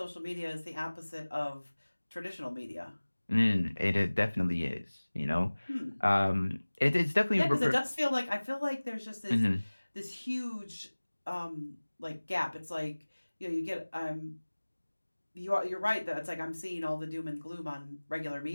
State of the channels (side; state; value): both; inverted; correlation -1.00